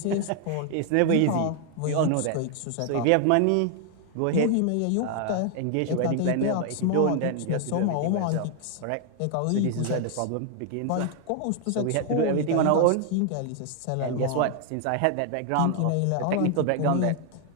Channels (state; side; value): different; both; correlation 0.00